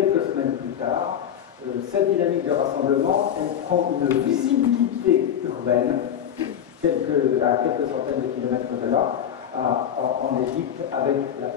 semaines plus tard, cette dynamique de rassemblement, elle prend une visibilité urbaine à quelques centaines de kilomètres de là, en Égypte, avec la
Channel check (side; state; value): right; quieter; 9.3 dB